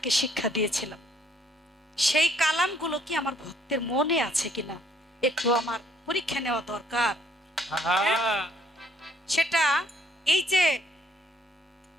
শিক্ষা দিয়েছিলাম। সেই কালামগুলো কি আমার ভক্তের মনে আছে কিনা একটু আমার পরীক্ষা নেওয়া দরকার। সেটা এই যে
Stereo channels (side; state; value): both; normal; correlation 0.65